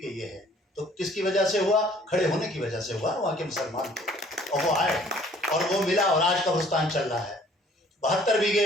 ये है। तो किसकी वजह से हुआ? खड़े होने की वजह से हुआ। वहाँ के मुसलमान थे और वो आए और वो मिला, और आज कब्रिस्तान चल रहा है। 72 बीघे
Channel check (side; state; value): both; normal; correlation 0.56